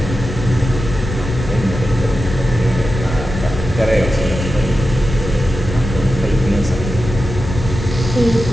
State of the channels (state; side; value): noise; left; rumble, 7 dB below the sound